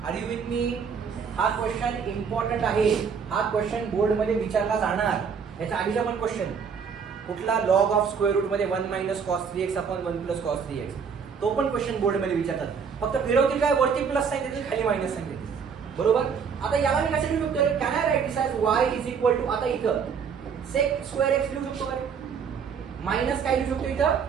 आर यू विथ मी. हा क्वेश्चन इम्पॉर्टंट आहे, हा क्वेश्चन बोर्ड मध्ये विचारला जाणार. याच्या आधीचा पण क्वेश्चन कुठला, लॉग ऑफ स्क्वेअर रूट मध्ये 1 minus cos 3x upon 1 plus cos 3x, तो पण क्वेश्चन बोर्ड मध्ये विचारतात. फक्त फिरवतील काय, वरती प्लस साइन देतील, खाली मायनस साइन देतील. बरोबर. आता याला मी कसं लिहू शकतो, can I write this as y is equal to, आता इथं सेक स्क्वेअर x लिहू शकतो का, मायनस काय लिहू शकतो इथं,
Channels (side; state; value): left; quieter; 6.4 dB